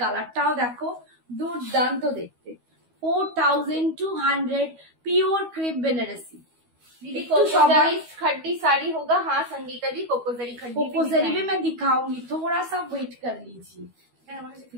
কালারটাও দেখো, দুর্দান্ত দেখতে। 4200 प्योर क्रेप बनारसी। खड्डी साड़ी होगा। हाँ संगीता दी, कोकोजरी खड्डी, कोकोजरी भी मैं दिखाऊंगी, थोड़ा सा वेट कर लीजिए।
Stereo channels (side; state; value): left; late; 12 ms